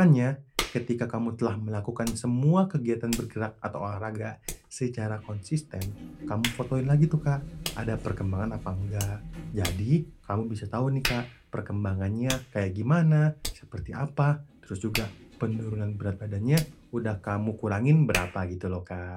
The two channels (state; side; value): identical; both; correlation 1.00